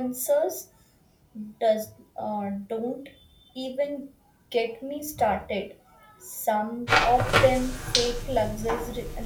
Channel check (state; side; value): identical; both; correlation 1.00